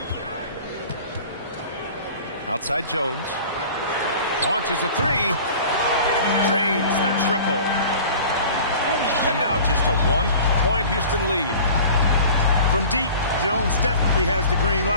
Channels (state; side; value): inverted; both; correlation -0.43